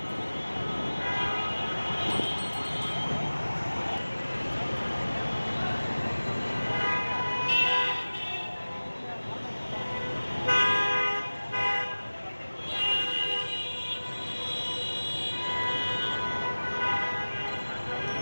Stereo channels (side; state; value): both; inverted; correlation -1.00